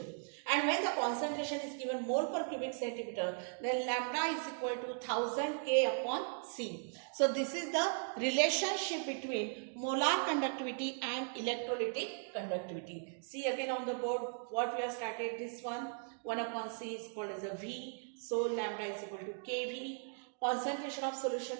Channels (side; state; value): left; silent; 53 dB below the other